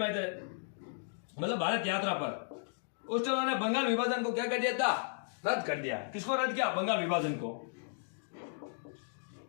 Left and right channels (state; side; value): silent; right; digital silence